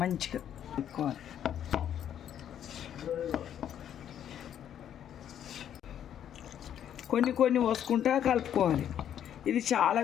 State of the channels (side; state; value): right; quieter; 9.9 dB